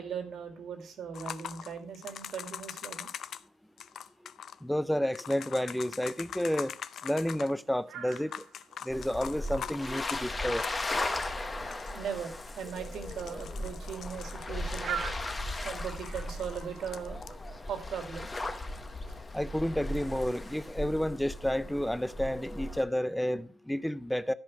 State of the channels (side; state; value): both; normal; correlation 0.92